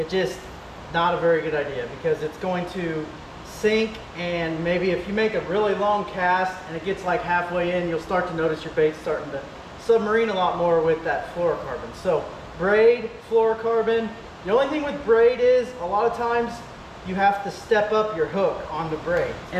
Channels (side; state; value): both; identical; correlation 1.00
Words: just not a very good idea because it's going to sink, and maybe if you make a really long cast and it gets like halfway in, you'll start to notice your bait starting to submarine a lot more with that fluorocarbon. So braid, fluorocarbon. The only thing with braid is a lot of times you have to step up your hook on the braid.